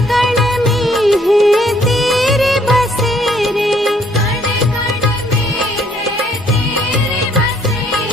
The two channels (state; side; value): normal; both; correlation 0.65